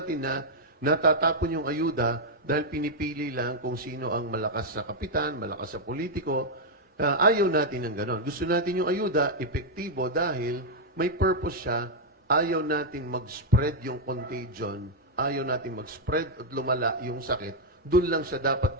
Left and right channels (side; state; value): both; normal; correlation -0.02